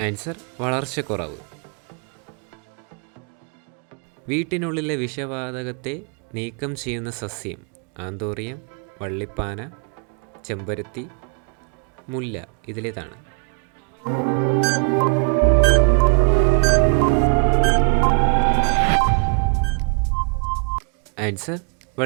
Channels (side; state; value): left; quieter; 36.9 dB